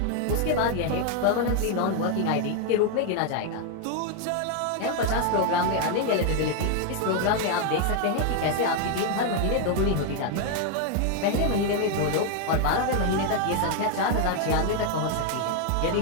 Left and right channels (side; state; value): both; different; correlation 0.01